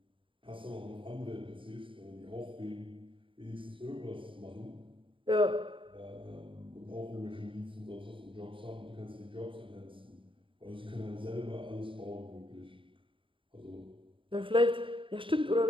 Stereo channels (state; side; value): late; left; 0.25 ms